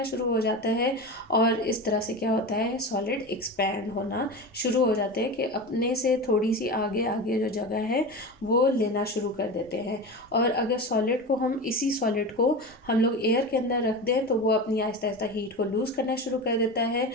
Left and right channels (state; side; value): normal; both; correlation 0.26